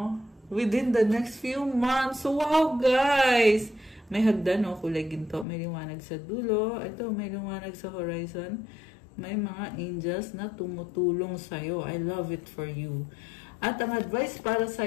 within the next few months. So, wow, guys! May hagdan, kulay ginto. May liwanag sa dulo. Ito, may liwanag sa horizon. May mga angels na tumutulong sa'yo. I love it for you. At ang advice para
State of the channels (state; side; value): drops out; right; at 5.5 s